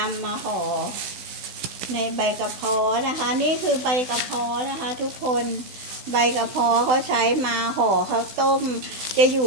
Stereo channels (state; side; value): late; left; 16 ms